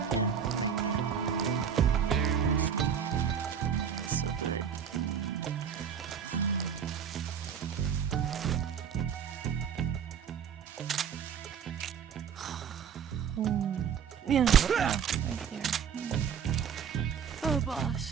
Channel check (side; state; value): left; quieter; 7.7 dB